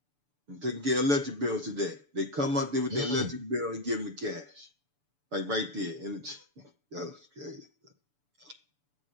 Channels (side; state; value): left; late; 6.9 ms